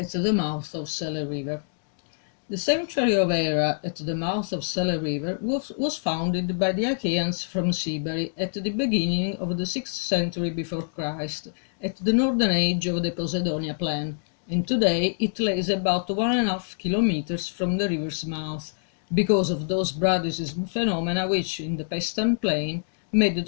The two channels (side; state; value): right; silent; digital silence